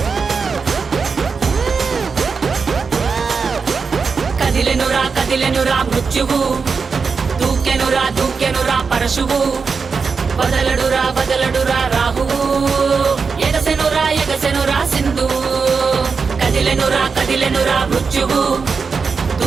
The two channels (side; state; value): left; quieter; 5.2 dB